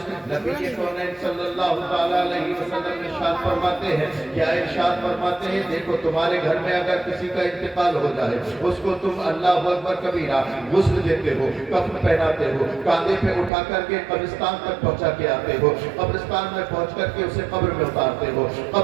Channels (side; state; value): left; drops out; at 13.5 s